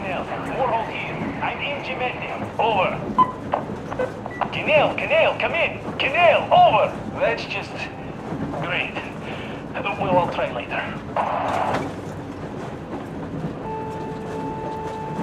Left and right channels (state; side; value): identical; both; correlation 1.00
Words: Warhol here. I'm in Gemendi. Over. Kenel, come in. Kenel, over. That's just great. We'll all try later.